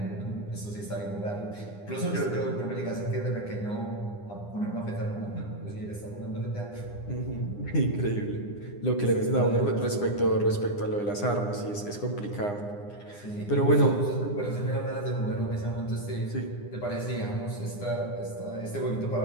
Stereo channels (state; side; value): late; right; 9.8 ms